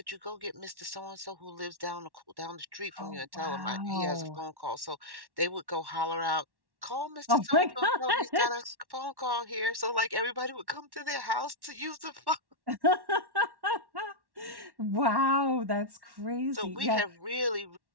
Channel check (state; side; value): late; left; 1.1 ms